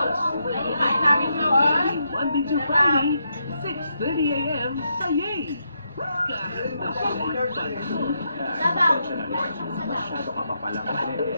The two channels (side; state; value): both; inverted; correlation -0.81